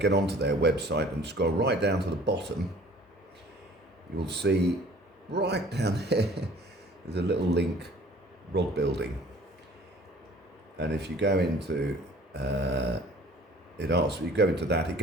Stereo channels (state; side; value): normal; both; correlation 0.51